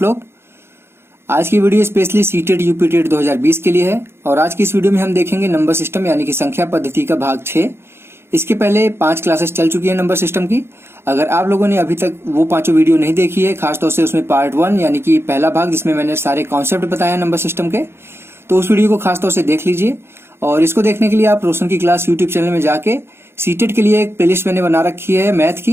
लोग। आज की वीडियो स्पेशली सीटेट यूपीटेट 2020 के लिए है और आज की इस वीडियो में हम देखेंगे नंबर सिस्टम यानी कि संख्या पद्धति का भाग 6। इसके पहले 5 क्लासेस चल चुकी है नंबर सिस्टम की। अगर आप लोगों ने अभी तक वो 5 वीडियो नहीं देखी है, खासतौर से उसमें पार्ट 1 यानी कि पहला भाग जिसमें मैंने सारे कॉन्सेप्ट बताया नंबर सिस्टम के, तो उस वीडियो को खासतौर से देख लीजिए। और इसको देखने के लिए आप रोशन की क्लास यूट्यूब चैनल में जाके सीटेट के लिए एक प्लेलिस्ट मैंने बना रखी है मैथ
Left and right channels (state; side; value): late; left; 0.12 ms